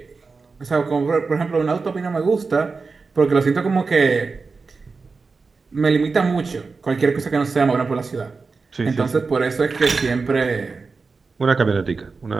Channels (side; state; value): left; quieter; 4.4 dB